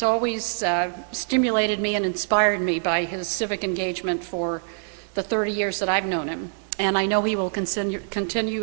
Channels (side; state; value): left; silent; 58 dB below the other